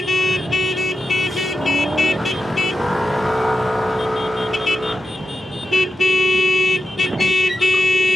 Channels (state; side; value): normal; both; correlation 0.89